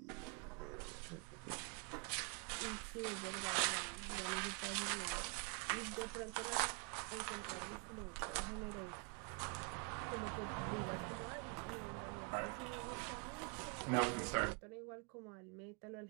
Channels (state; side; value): quieter; left; 34.7 dB